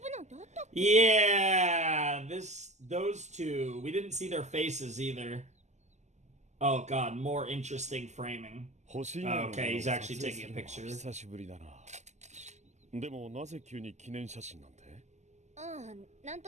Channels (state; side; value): late; left; 0.33 ms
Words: Yeah, those two. We didn't see their faces either. Oh god, more interesting framing. Okay, he's actually taking a picture.